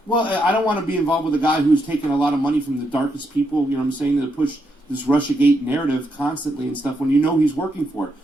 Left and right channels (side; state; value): both; normal; correlation 0.80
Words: Well, I don't want to be involved with a guy who's taken a lot of money from the darkest people, you know what I'm saying, to push this Russiagate narrative constantly and stuff when you know he's working for it.